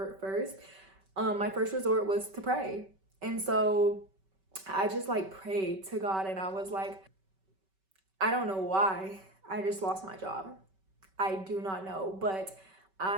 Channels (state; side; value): late; left; 5.2 ms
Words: My first resort was to pray. And so I just like prayed to God, and I was like, I don't know why I just lost my job. I do not know, but